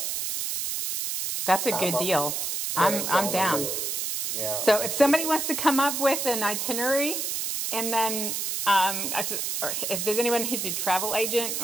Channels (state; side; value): noise; right; hiss, 2 dB below the sound